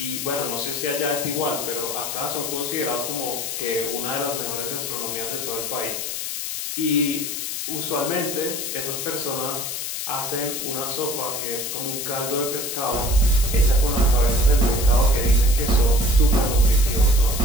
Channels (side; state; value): left; noise; hiss, 4 dB below the sound